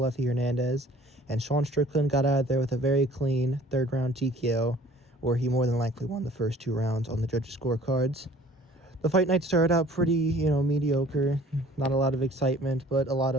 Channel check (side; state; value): both; normal; correlation 0.51